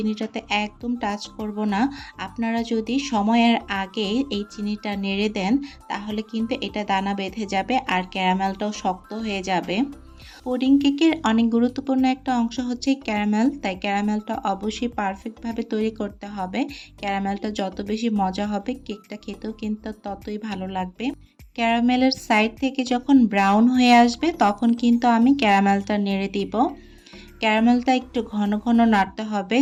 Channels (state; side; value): identical; both; correlation 1.00